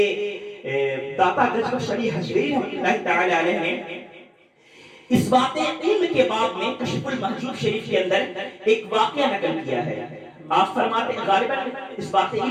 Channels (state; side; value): identical; both; correlation 1.00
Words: داتا گجبہ شریح حجویری رحمۃ اللہ تعالی علیہ نے اس بات علم کے باب میں کشف المحجوب شریف کے اندر ایک واقعہ نقل کیا ہے۔ آپ فرماتے ہیں غالباً اس بات